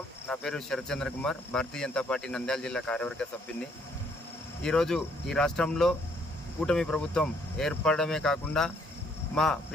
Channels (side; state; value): both; normal; correlation 0.67